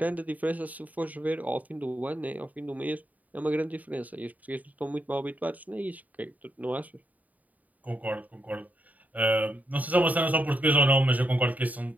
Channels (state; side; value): late; left; 0.075 ms